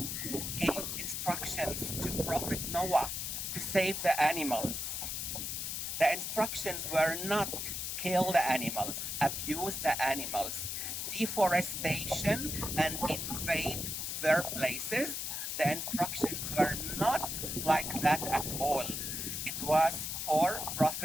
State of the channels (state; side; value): noise; left; hiss, 3 dB below the sound